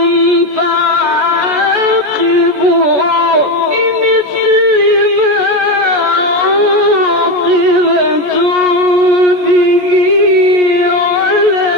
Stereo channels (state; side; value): late; left; 14 ms